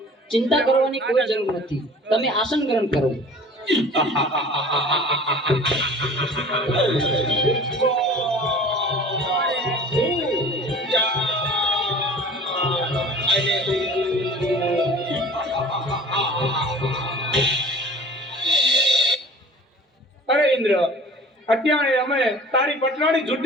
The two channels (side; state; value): both; normal; correlation 0.44